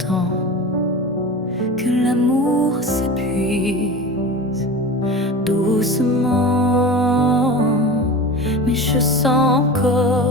que l'amour s'épuise doucement. Mais je sens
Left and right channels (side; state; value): both; normal; correlation 0.31